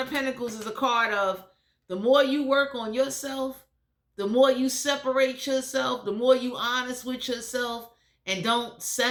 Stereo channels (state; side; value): identical; both; correlation 1.00